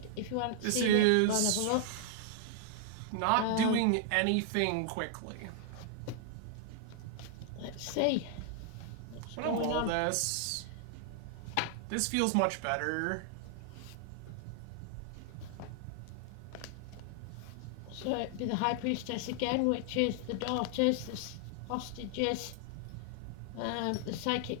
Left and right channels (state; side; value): different; both; correlation 0.00